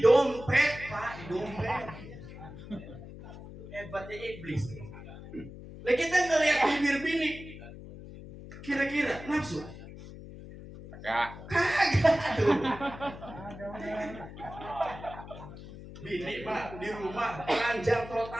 dompet Pak, di dompet. Hebatnya iblis. Lah kita ngelihat bibir bini, kira-kira nafsu? Kagak tuh. Bini Pak di rumah telanjang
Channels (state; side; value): noise; left; hum, 14 dB below the sound